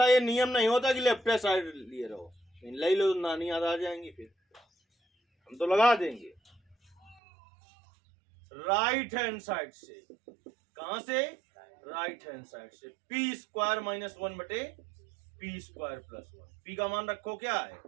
ये नियम नहीं होता कि लेफ्ट साइड लिए रहो, ले लो नानी याद आ जाएंगी, फिर हम तो लगा देंगे राइट हैंड साइड से। कहां से, राइट हैंड साइड से। P² - 1 बटे P² + 1। P का मान रखो क्या है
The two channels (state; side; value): drops out; left; at 7.2 s